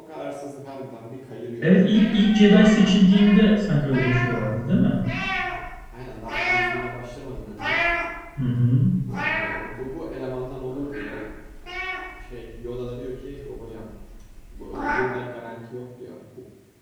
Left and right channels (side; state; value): both; identical; correlation 1.00